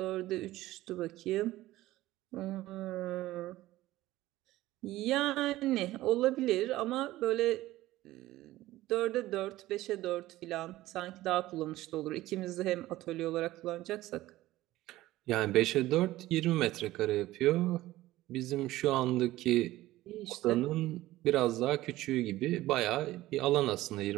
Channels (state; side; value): quieter; left; 16.4 dB